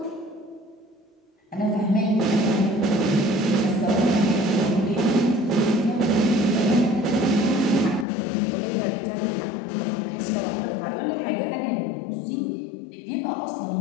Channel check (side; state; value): right; drops out; at 8.1 s